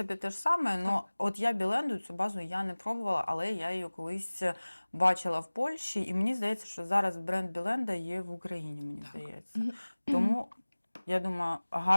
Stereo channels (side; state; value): both; inverted; correlation -1.00